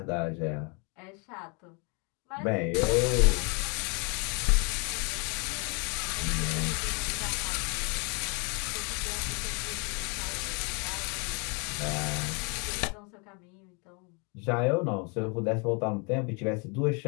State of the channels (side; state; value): right; quieter; 33.6 dB